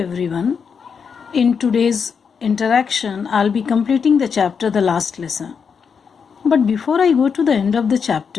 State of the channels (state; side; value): quieter; right; 6.3 dB